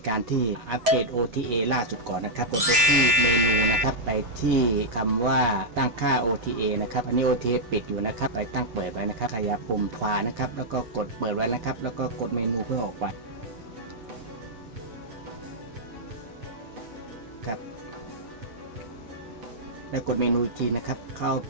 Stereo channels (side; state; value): left; late; 8.0 ms